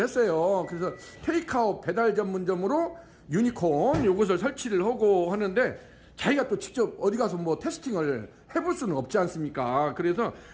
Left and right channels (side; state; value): both; identical; correlation 1.00